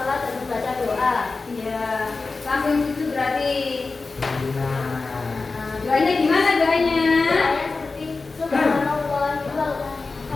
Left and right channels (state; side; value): quieter; right; 3.9 dB